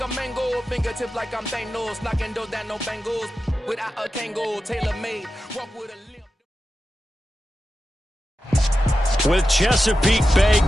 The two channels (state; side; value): normal; both; correlation 0.91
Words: a mango, fingertips like I'm Thanos, knocking those down no bangles. Without a Kango, tailor-made, walk with a limp. With Chesapeake Bay